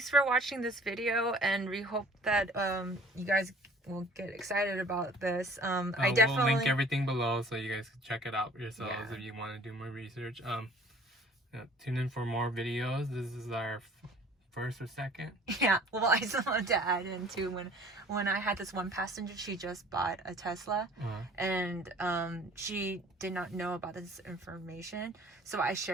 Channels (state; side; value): normal; both; correlation 0.51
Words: for watching this video, and we hope that you guys will get excited about this. I definitely will link everything below so you guys can check it out yourselves if you want to do more research. Tune in for more videos. This is our first or second. Yeah, well, I just wanted to add in too, when I had this one passenger, she just bought a Tesla, and she did not know about this information, so I